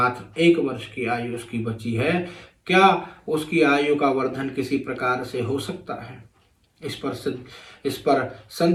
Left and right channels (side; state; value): both; identical; correlation 1.00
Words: 1 वर्ष की आयु उसकी बची है। क्या उसकी आयु का वर्धन किसी प्रकार से हो सकता है? इस पर